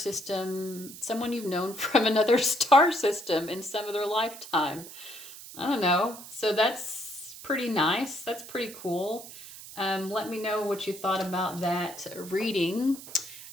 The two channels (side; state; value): right; noise; hiss, 14 dB below the sound